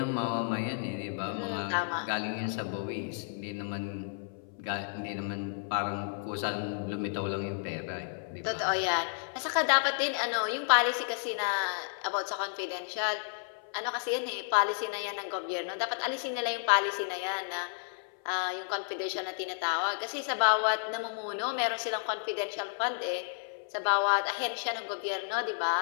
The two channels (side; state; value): right; silent; 56 dB below the other